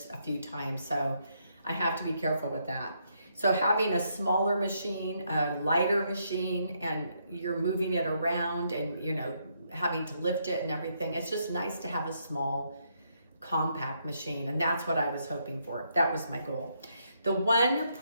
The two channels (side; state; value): both; inverted; correlation -0.76